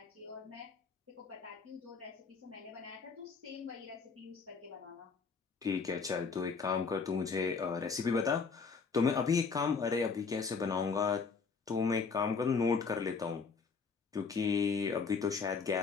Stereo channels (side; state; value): right; quieter; 5.2 dB